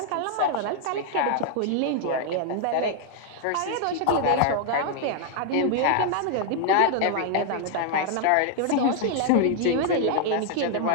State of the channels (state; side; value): different; both; correlation 0.00